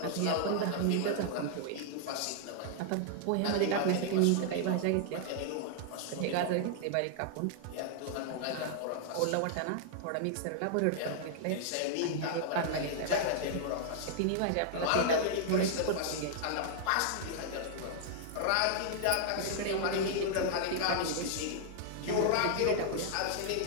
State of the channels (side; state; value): both; different; correlation -0.01